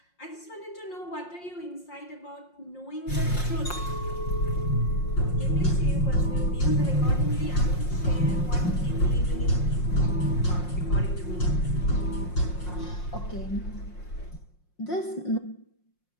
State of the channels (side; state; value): right; late; 5.6 ms